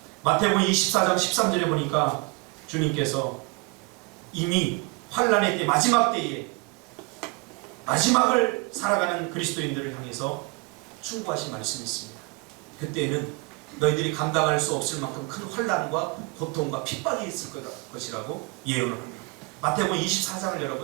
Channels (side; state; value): left; quieter; 28.9 dB